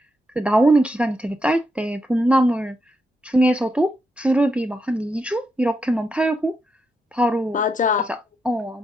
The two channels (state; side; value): normal; both; correlation 0.82